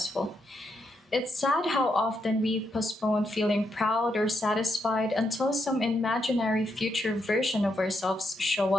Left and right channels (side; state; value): both; normal; correlation 0.80